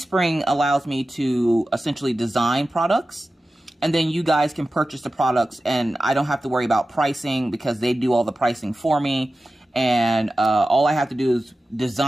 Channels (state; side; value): normal; both; correlation 0.94